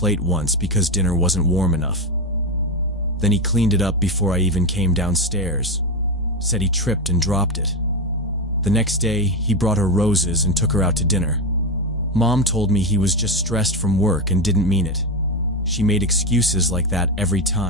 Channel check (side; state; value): both; normal; correlation 0.13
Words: once because dinner wasn't warm enough. Then he cleaned it up before I even came downstairs. Said he tripped and dropped it. The next day, he brought her roses and took her out to dinner. Mom told me he was just stressed from work and didn't mean it. She made excuses like that every